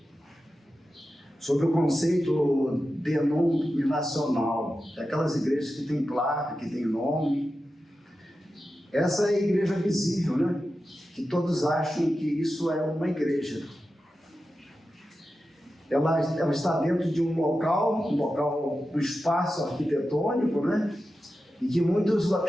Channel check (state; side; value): normal; both; correlation 0.92